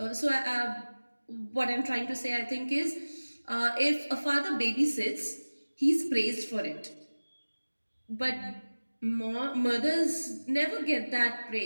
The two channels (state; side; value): inverted; both; correlation -1.00